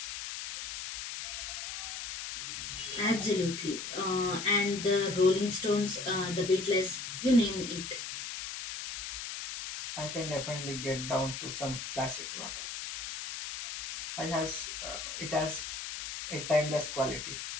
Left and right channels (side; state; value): left; noise; hiss, 6 dB below the sound